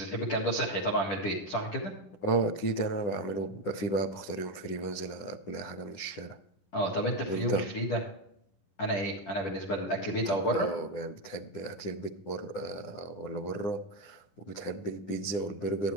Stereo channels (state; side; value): late; right; 10 ms